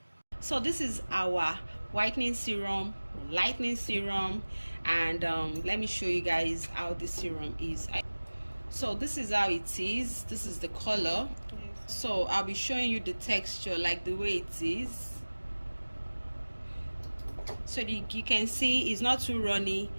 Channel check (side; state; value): both; inverted; correlation -1.00